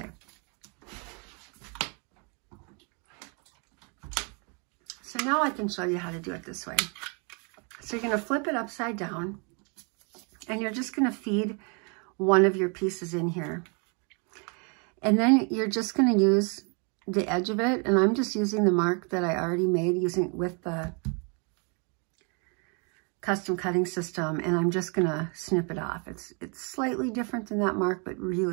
So now I can show you how to do it this way. So you're going to flip it upside down, and you're just going to feed one of your pieces in here. And then you're just going to use the edge of it, and I'm just using the mark that I already made with the custom cutting system, and I'm just going to snip it off. It's slightly different than that mark, but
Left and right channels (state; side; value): quieter; left; 35.6 dB